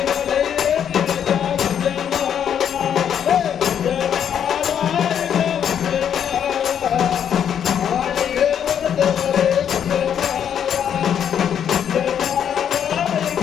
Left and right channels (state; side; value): quieter; right; 8.8 dB